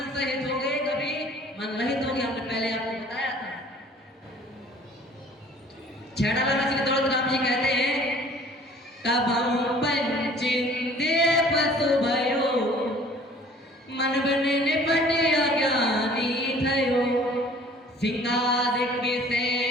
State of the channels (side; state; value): both; normal; correlation 0.52